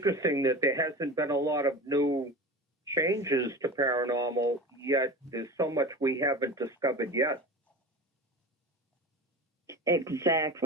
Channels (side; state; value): both; normal; correlation 0.31